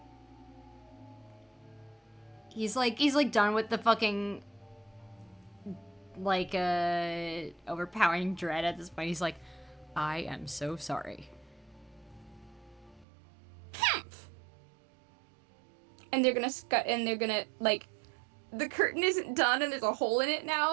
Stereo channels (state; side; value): drops out; left; at 13.1 s